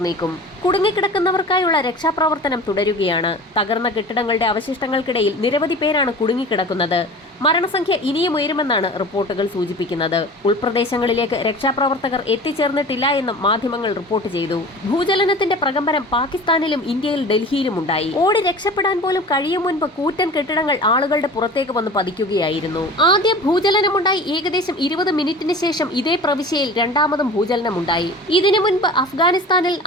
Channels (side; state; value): both; normal; correlation 0.38